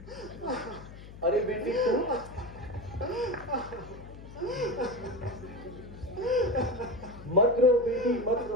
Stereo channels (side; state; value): left; noise; hum, 15 dB below the sound